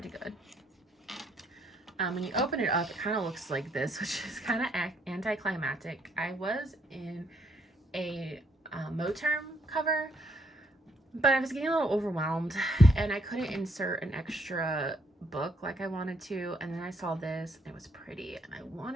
good. When you open it up, it kind of looks like this, which is kind of anticlimactic. I was in a Moterm cover, but I was getting a little overwhelmed and I couldn't insert an extra book like I wanted to. And then I saw this and it was pretty and I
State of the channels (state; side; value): normal; both; correlation 0.71